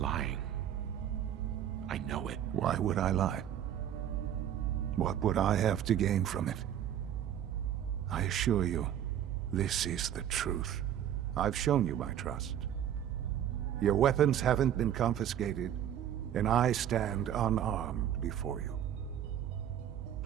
lying. I know it. Why would I lie? What would I have to gain from it? I assure you, this is the truth. I've shown you my trust. Your weapons haven't been confiscated, and I stand unarmed before you.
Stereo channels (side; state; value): left; quieter; 10.3 dB